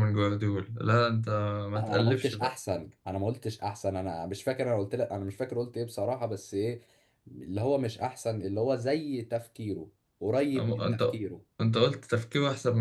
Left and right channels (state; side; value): identical; both; correlation 1.00